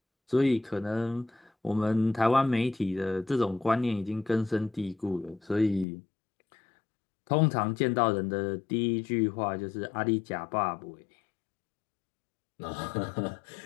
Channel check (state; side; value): drops out; right; at 5.9 s